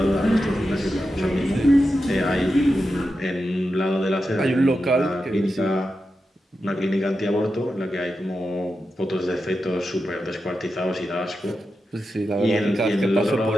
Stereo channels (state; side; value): normal; both; correlation 0.90